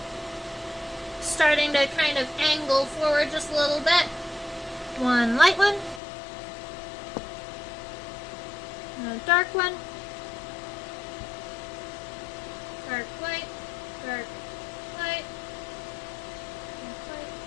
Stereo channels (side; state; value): right; drops out; at 6.0 s